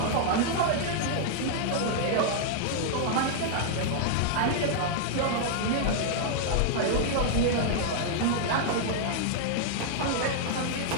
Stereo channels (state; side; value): different; both; correlation -0.01